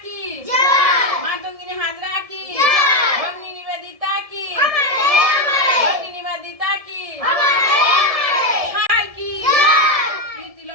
কি, মাতঙ্গিনী হাজরা কি, ভগ্নী নিবেদিতা কি, ভগ্নী নিবেদিতা কি, কি,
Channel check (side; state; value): left; late; 1.7 ms